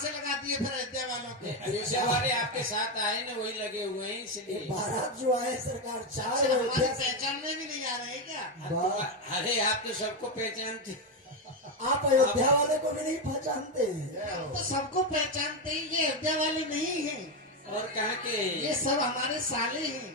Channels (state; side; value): normal; both; correlation 0.08